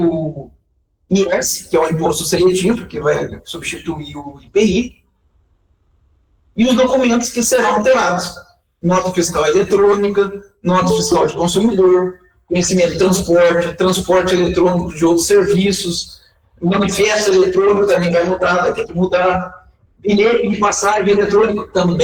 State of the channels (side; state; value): both; identical; correlation 1.00